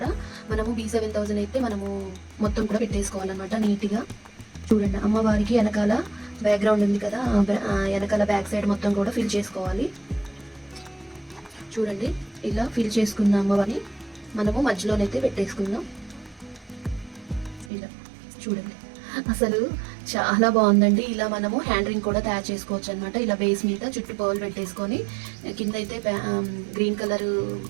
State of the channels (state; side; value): drops out; left; at 17.7 s